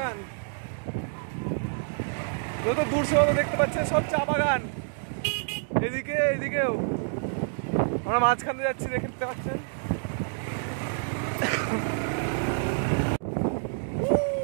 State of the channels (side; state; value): left; silent; digital silence